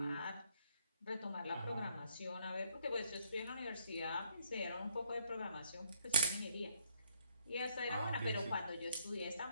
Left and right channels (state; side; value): inverted; both; correlation -0.69